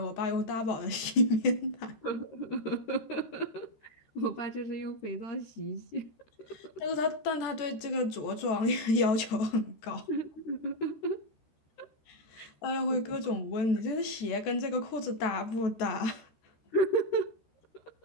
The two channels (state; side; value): late; right; 14 ms